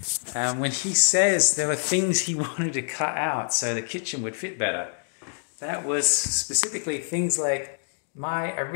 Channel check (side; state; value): right; silent; digital silence